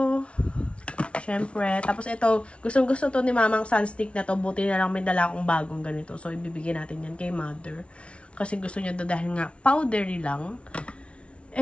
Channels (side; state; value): right; late; 0.060 ms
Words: Siyempre. Tapos ito, gustong-gusto to ni Mama ang sunstick na to. Buti na lang may dala akong bagong ganito. So, ibibigay natin yan kay Mother. Kasi gusto niya to dahil nga powdery lang.